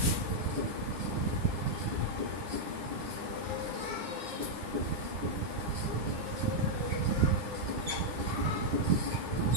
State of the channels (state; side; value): late; left; 9.9 ms